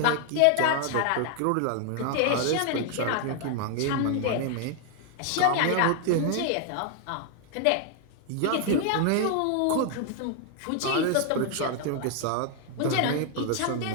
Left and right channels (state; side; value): different; both; correlation 0.00